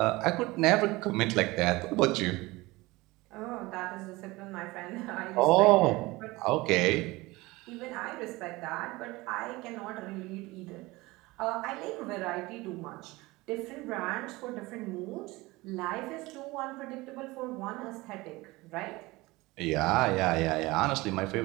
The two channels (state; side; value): quieter; left; 21.3 dB